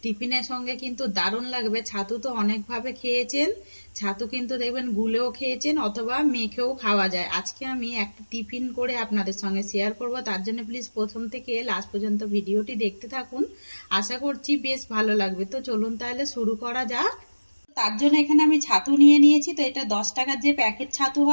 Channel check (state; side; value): inverted; both; correlation -1.00